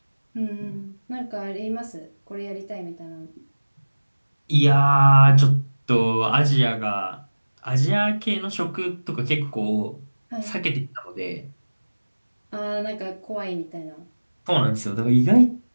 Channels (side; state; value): both; inverted; correlation -1.00